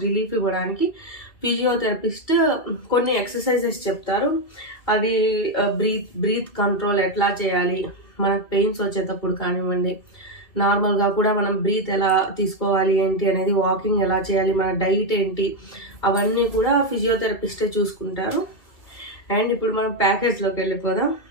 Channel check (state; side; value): late; right; 2.3 ms